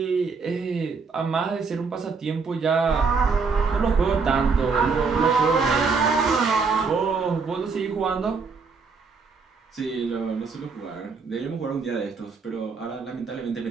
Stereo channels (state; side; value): quieter; left; 4.9 dB